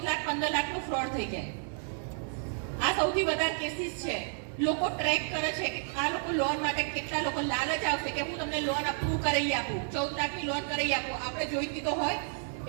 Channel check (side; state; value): left; silent; digital silence